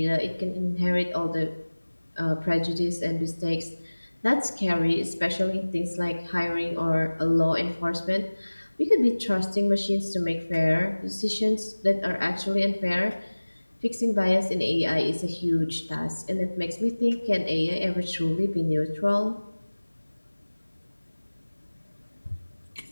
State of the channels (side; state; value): both; inverted; correlation -1.00